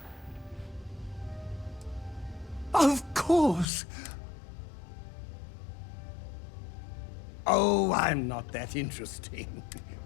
Of course. Oh, I'm not that interesting.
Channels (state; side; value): drops out; right; at 3.7 s